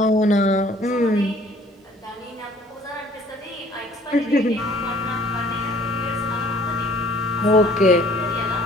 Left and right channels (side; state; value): both; normal; correlation 0.56